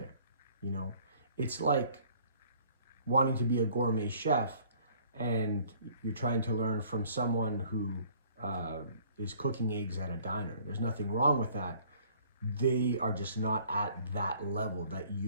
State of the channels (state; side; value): inverted; both; correlation -0.56